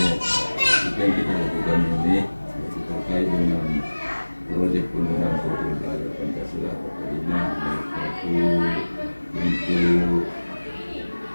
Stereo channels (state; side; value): inverted; both; correlation -1.00